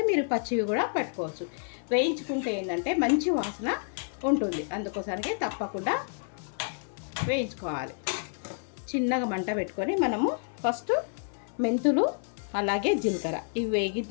మీరు పచ్చివి కూడా పెట్టుకోవచ్చు. వేయించుకుంటే ఏంటంటే మంచి వాసన ఉంటుంది. అందుకోసానికే తప్పకుండా వేయించుకోవాలి. చిన్నగా మంట పెట్టుకొని మనము ఫస్ట్ మెంతులు అలాగే జీలకర్ర ఇవి వేగిన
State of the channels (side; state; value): right; silent; 56 dB below the other